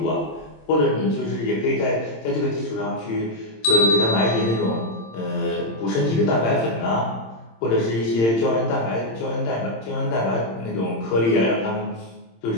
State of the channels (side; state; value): right; late; 26 ms